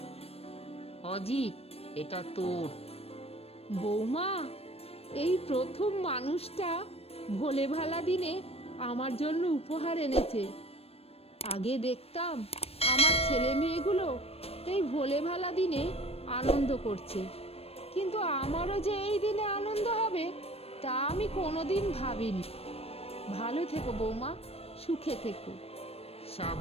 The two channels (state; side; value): late; right; 0.29 ms